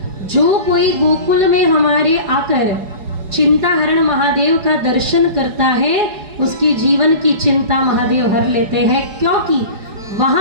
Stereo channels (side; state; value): left; late; 4.7 ms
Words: जो कोई गोकुल में हमारे आकर चिंताहरण महादेव का दर्शन करता है उसकी जीवन की चिंता महादेव हर लेते हैं, क्योंकि